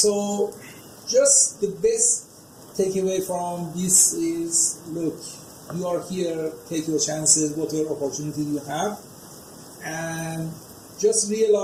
just the best takeaway from this is, look, you are here, take your chances, whatever opportunity you have, and just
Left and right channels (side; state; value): both; identical; correlation 1.00